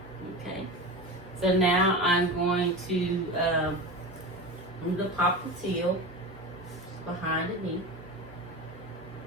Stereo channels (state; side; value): normal; both; correlation 0.27